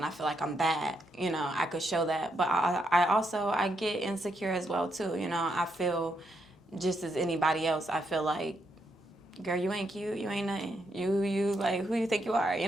I feel like I'm that. I could show that, but I get insecure as well too. I feel just as anybody else. I feel like, girl, you ain't cute, you ain't nothing. You like, who you think you are?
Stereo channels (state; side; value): normal; both; correlation 0.79